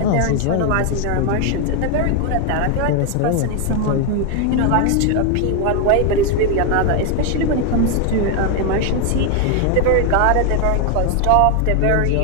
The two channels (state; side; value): different; both; correlation 0.01